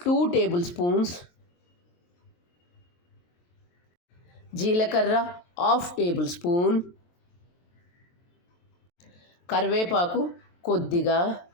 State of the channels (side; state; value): right; late; 23 ms